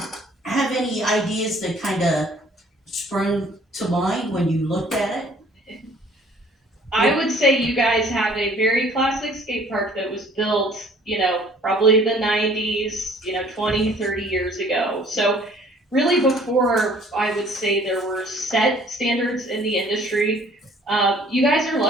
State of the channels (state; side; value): normal; both; correlation 0.55